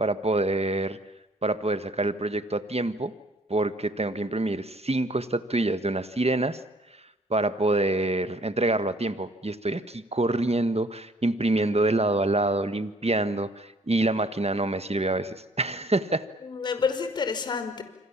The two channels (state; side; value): normal; both; correlation 0.58